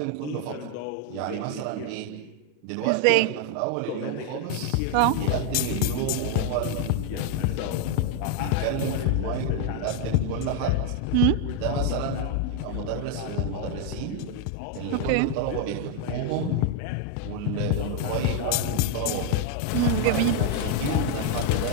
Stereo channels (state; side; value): different; both; correlation 0.01